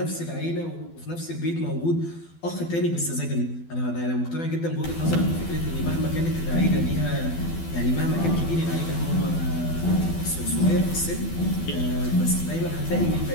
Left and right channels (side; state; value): right; late; 12 ms